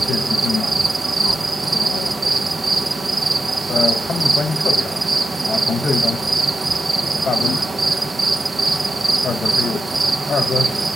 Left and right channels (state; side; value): normal; both; correlation 0.90